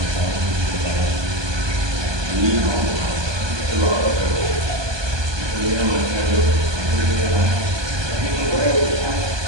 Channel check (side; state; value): left; late; 1.2 ms